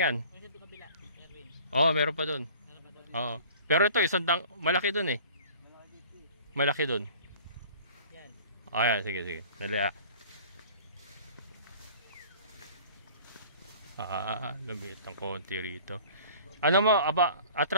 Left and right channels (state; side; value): inverted; both; correlation -0.46